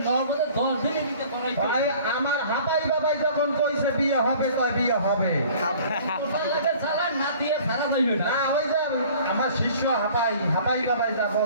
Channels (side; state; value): both; inverted; correlation -0.50